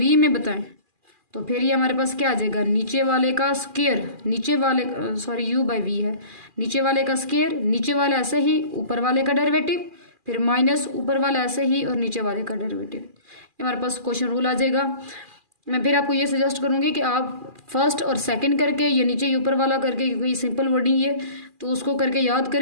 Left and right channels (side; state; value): left; late; 2.4 ms